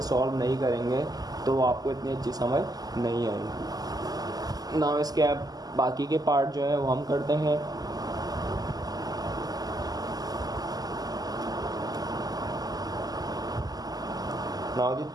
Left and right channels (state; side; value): late; left; 0.18 ms